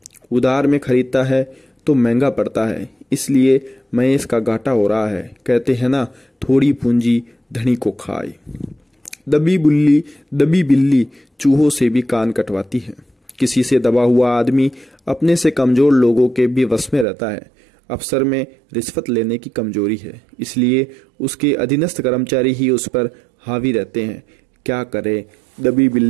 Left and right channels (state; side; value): drops out; left; at 17.1 s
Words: उधार में खरीदता है तो महंगा पड़ता है, इसलिए महेश का घाटा हो रहा है। कहते हैं ना, थोड़ी पूंजी धनी को खाए। दबी बिल्ली चूहों से भी कान कटवाती है। किसी से दबा हुआ आदमी अपने से कमजोर लोगों के भी वश में रहता है। अफसर में रिश्वत लेने की कमजोरी है, इसलिए उसके अधीनस्थ कर्मचारी ही उस पर हावी रहते हैं। क्या करे, दबी